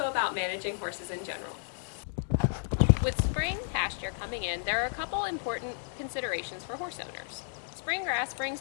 about managing horses in general. With spring pasture coming in, there are a couple important considerations for horse owners. Spring grass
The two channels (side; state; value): right; silent; digital silence